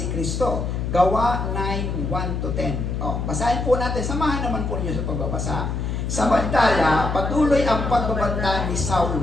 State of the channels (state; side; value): noise; left; hum, 2 dB below the sound